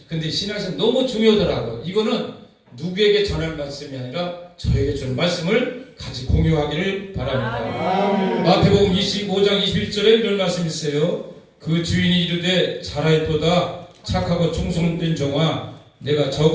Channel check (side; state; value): both; identical; correlation 1.00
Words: 근데 신앙에서 너무 중요하더라고요. 이거는 누구에게 전할 말씀이 아니라 저에게 주는 말씀을 같이 공유하기를 바랍니다. 마태복음 25장 21절에 이런 말씀이 있어요. 그 주인이 이르되 잘하였도다 착하고 충성된 종아 내가